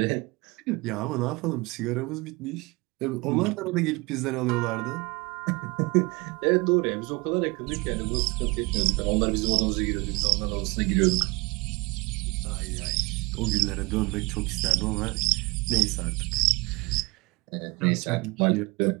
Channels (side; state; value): left; quieter; 25.3 dB